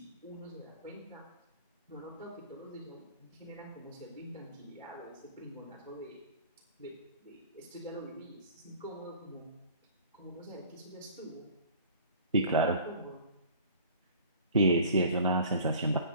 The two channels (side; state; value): both; inverted; correlation -0.47